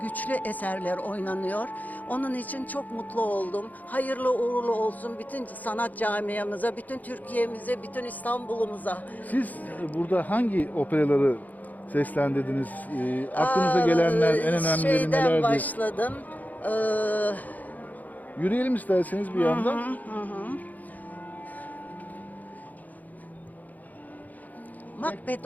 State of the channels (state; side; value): late; right; 0.080 ms